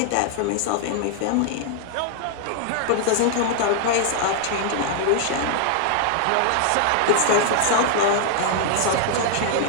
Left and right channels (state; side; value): different; both; correlation 0.00